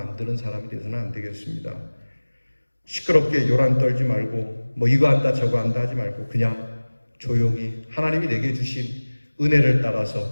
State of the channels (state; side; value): inverted; both; correlation -1.00